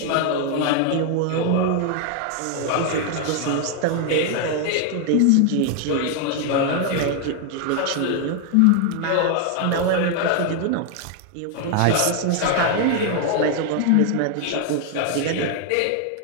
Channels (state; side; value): different; both; correlation 0.00